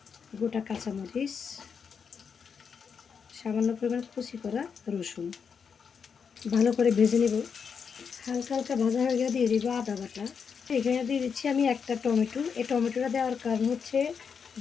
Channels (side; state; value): right; quieter; 6.4 dB